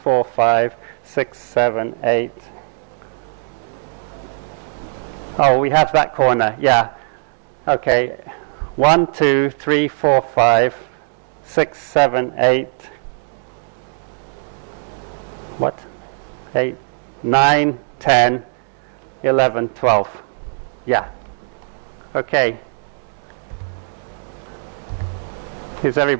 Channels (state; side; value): silent; left; digital silence